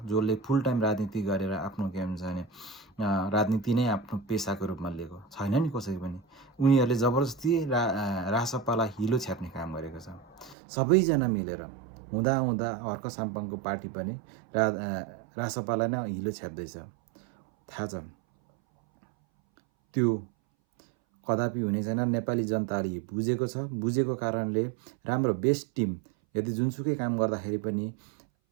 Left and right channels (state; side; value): drops out; left; at 10.6 s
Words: जसले फुल टाइम राजनीति गरेर आफ्नो के हुन्छ भने राजनीति नै आफ्नो पेसाको रूपमा लिएको छैन नि कसै पनि। उनीहरूले जबरजस्ती रासपालाई हिलो छ्याप्ने काम गरेको छ। सबैजना मिलेर हुँदा हर्क साम्पाङको पार्टी पनि रासपालाई नै हिलो छ्याप्दैछ, थाहा छ। त्यो कदापि हुने छैन। नेपाली जनताले बुझेको छ। बुझेको कारणले राम्रो बेस्ट टिम यदि जुनसुकै काम गर्दाखेरि पनि